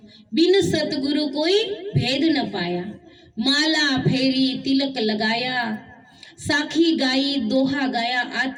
बिन सतगुरु कोई भेद न पाया, माला फेरी तिलक लगाया, साखी गाई दोहा गाया,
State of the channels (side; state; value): both; identical; correlation 1.00